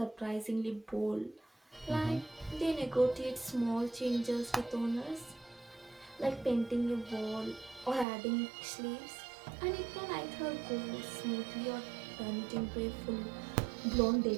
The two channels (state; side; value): drops out; left; at 8.1 s